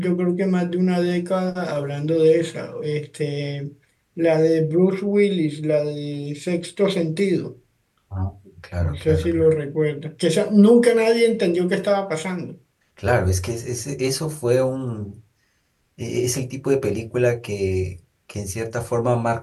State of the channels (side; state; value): both; identical; correlation 1.00